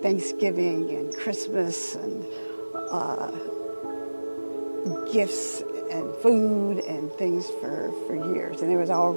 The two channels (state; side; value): inverted; both; correlation -1.00